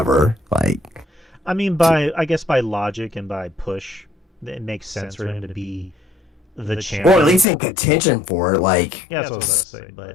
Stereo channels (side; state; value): right; drops out; at 7.5 s